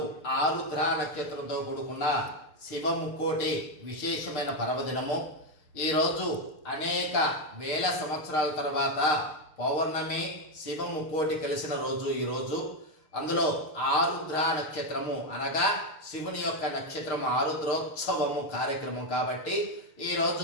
ఆరుద్ర నక్షత్రంతో కూడుకున్న శివముక్కోటి విశేషమైన పర్వదినము. ఈరోజు అనేక వేల సంవత్సరాల తర్వాత పౌర్ణమి శివముక్కోటి కలిసిన రోజు ఈరోజు. అందులో ఆరుద్ర నక్షత్రము అనగా శివుని యొక్క నక్షత్రం, ఆరుద్రోత్సవము కార్యక్రమం కాబట్టి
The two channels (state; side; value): late; right; 6.4 ms